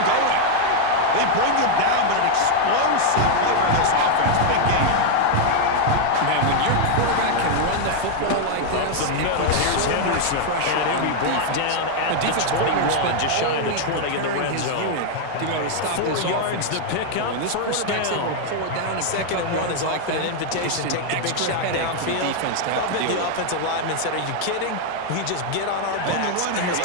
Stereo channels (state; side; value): different; both; correlation 0.00